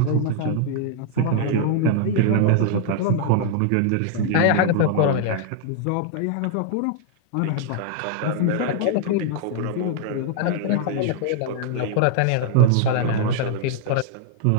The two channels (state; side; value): different; both; correlation 0.00